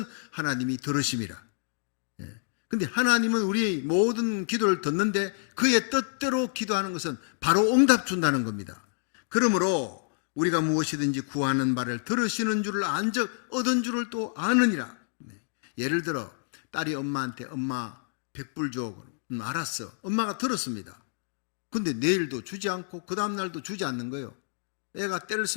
하나님이 들으심이라. 근데 하나님은 우리의 모든 기도를 듣는데 그의 뜻대로 기도하는 것은 바로 응답 준다는 겁니다. 그러므로 우리가 무엇이든지 구하는 바를 들으시는 줄을 안즉 얻은 줄을 또 아느니라. 예를 들어 딸이 엄마한테 엄마 100불 줘. 알았어. 엄마가 들었습니다. 근데 내일도 주지 않고 그 다음날도 주지 않는 거예요. 애가 때를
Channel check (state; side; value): silent; right; digital silence